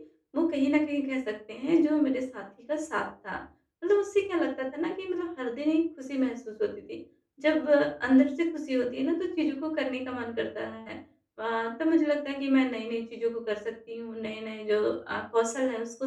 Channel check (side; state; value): both; identical; correlation 1.00